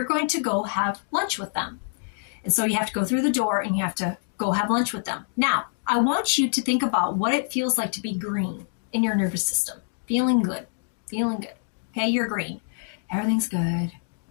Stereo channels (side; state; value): right; silent; digital silence